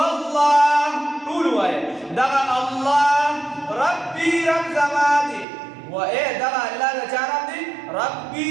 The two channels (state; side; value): drops out; left; at 5.5 s